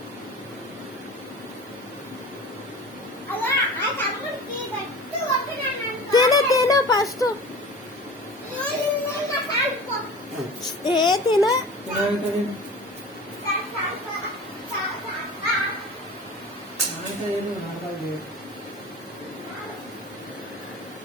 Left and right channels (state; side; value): normal; both; correlation 0.37